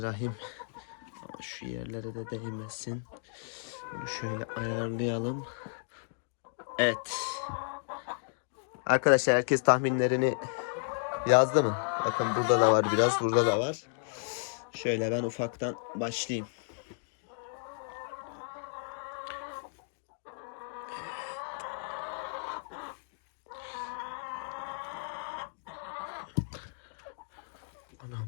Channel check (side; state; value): right; silent; digital silence